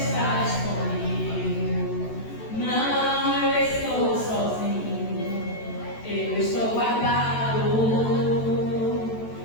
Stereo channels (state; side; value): late; right; 14 ms